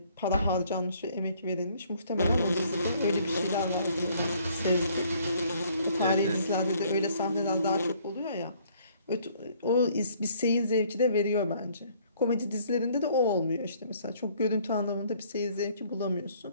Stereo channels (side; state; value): both; inverted; correlation -0.62